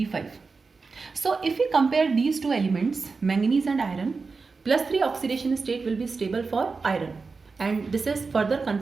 So if we compare these two elements, manganese and iron, +3 oxidation state will be stable for iron. And this is further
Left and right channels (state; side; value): quieter; left; 4.4 dB